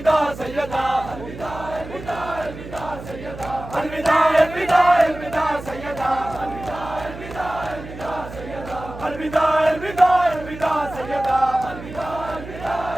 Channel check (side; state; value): right; noise; hum, 13 dB below the sound